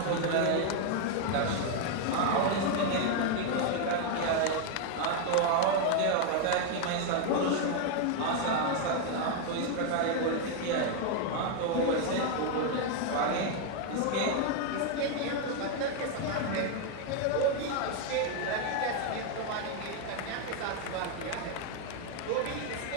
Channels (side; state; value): both; different; correlation 0.01